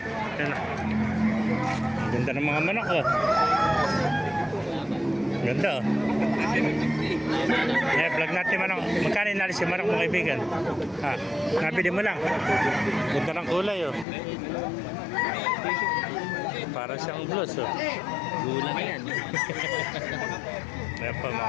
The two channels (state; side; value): drops out; right; at 14.1 s